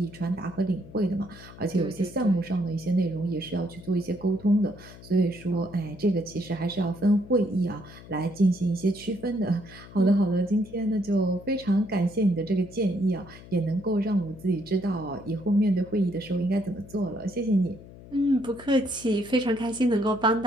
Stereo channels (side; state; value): left; noise; hum, 18 dB below the sound